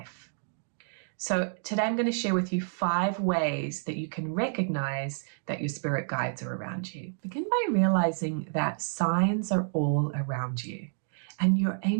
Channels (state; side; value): silent; left; digital silence